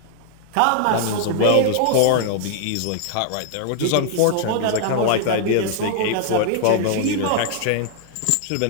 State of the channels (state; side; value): different; both; correlation -0.01